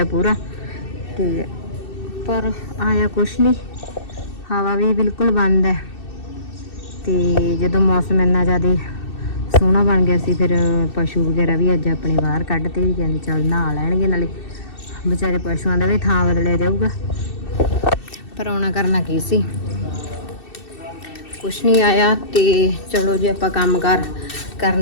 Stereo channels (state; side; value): late; right; 2.6 ms